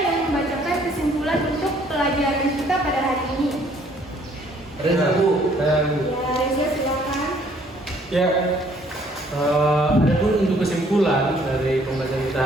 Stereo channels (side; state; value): both; normal; correlation 0.61